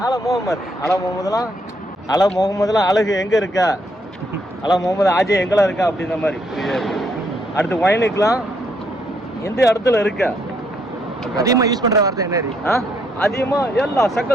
அலா முகமதுலாம் அழகு எங்க இருக்கா அலா முகமது ஆஜய் எங்கெல்லாம் இருக்கா அப்படின்ற மாதிரி அடுத்து ஒயினுக்குலாம் எந்த இடத்துல இருக்கா அதிகமாக யூஸ் பண்ணுற வார்த்தை என்ன அதிகமா எல்லாம்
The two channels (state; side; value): normal; both; correlation 0.72